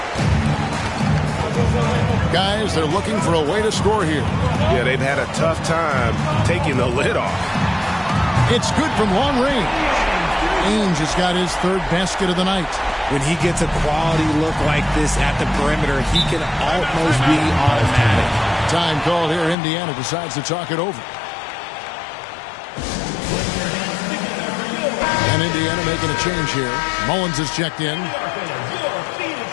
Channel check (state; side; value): drops out; right; at 19.6 s